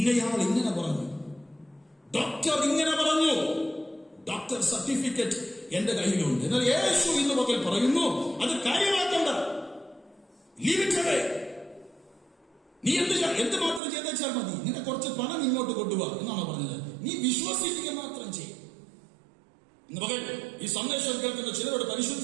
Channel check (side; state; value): left; drops out; at 13.8 s